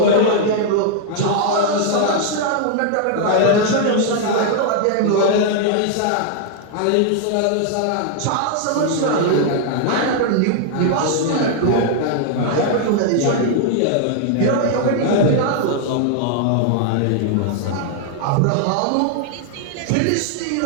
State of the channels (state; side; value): different; both; correlation 0.00